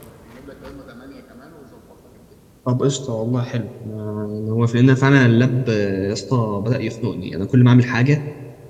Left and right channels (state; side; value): identical; both; correlation 1.00